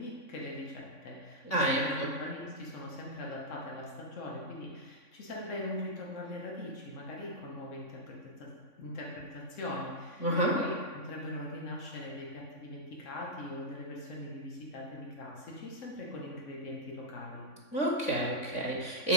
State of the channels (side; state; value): right; late; 3.6 ms